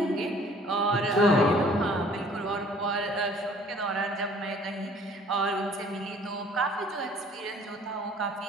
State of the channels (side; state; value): both; normal; correlation 0.55